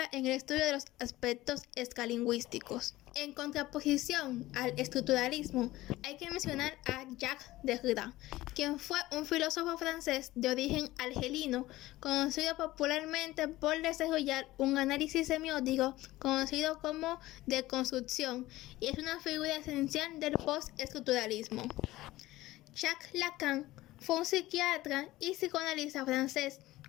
en el estudio de los aspectos escalingüísticos. En contraposición al estructuralismo, hay que mencionar a Jacques Derrida, quien fue un filósofo francés de origen argelino, conocido popularmente por desarrollar un análisis semiótico conocido como deconstrucción, y es una figura esencial del postestructuralismo. Jacques Lacan fue un psiquiatra y psicoanalista francés,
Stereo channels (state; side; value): quieter; right; 17.3 dB